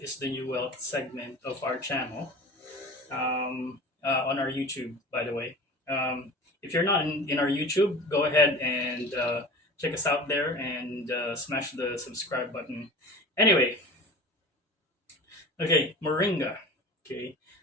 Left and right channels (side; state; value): both; normal; correlation 0.37